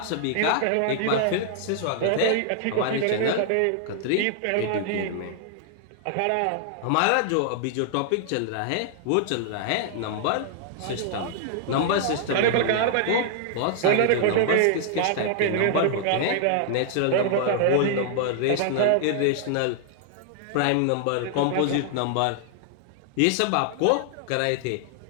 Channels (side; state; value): both; different; correlation -0.01